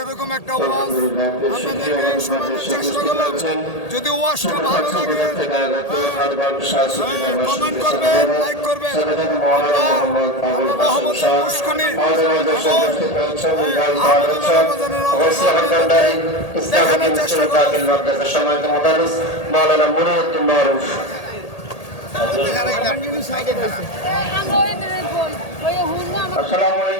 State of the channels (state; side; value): late; right; 1.8 ms